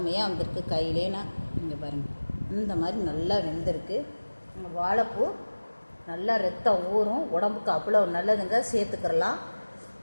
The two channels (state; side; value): inverted; both; correlation -1.00